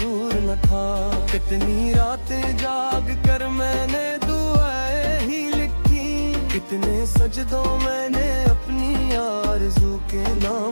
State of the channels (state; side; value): inverted; both; correlation -1.00